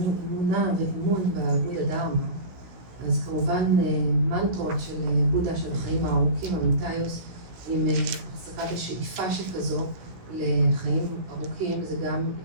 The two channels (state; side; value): late; left; 17 ms